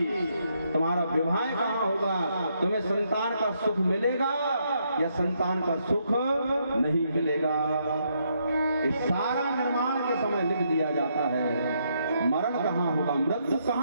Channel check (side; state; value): both; inverted; correlation -0.76